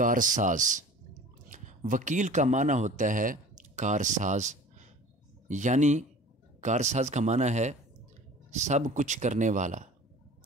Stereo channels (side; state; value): both; normal; correlation 0.43